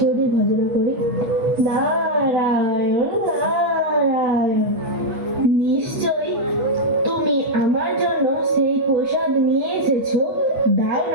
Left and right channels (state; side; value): late; left; 8.5 ms